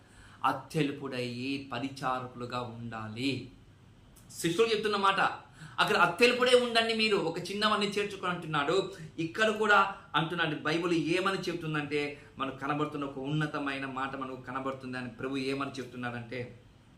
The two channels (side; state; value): both; identical; correlation 1.00